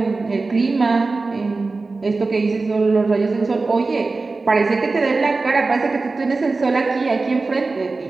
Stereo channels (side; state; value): left; quieter; 3.7 dB